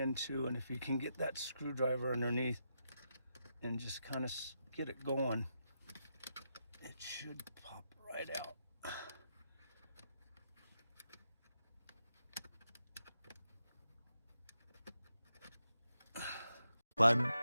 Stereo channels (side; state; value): both; inverted; correlation -0.85